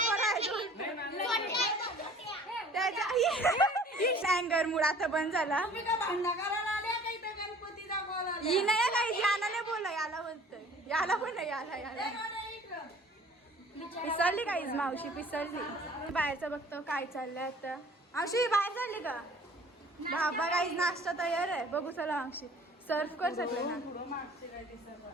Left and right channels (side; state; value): both; normal; correlation 0.49